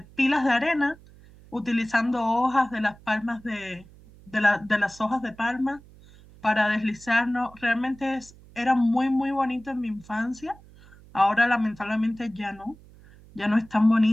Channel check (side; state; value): right; noise; hum, 23 dB below the sound